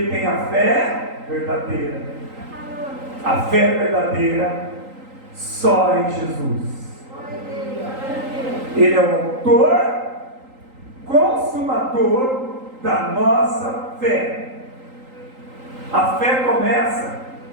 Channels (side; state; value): left; late; 3.8 ms